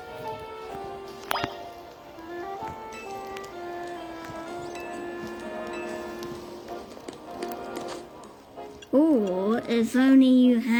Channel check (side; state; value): both; identical; correlation 1.00